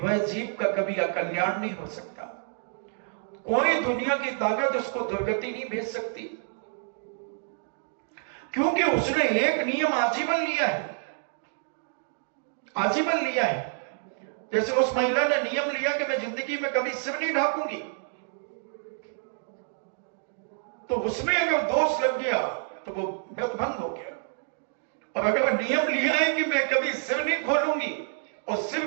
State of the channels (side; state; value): left; silent; digital silence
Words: जीव का कभी अकल्याण नहीं हो सकता। कोई दुनिया की ताकत उसको दुर्गति नहीं भेज सकती, क्योंकि उसने एक नियम आजीवन लिया है, आजीवन लिया है। जैसे उस महिला ने नियम लिया कि मैं जिंदगी में कभी सिर नहीं ढांकूंगी, तो उसमें अगर दोष लग गया तो वो व्रत भंग हो गया। और अगर नियम लिया है कि मैं कभी सिर नहीं खोलूंगी और सिर